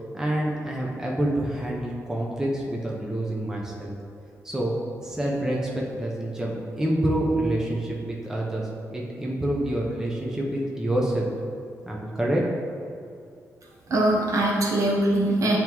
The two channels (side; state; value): both; normal; correlation 0.82